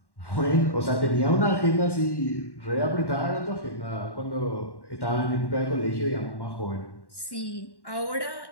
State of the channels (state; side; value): late; right; 1.1 ms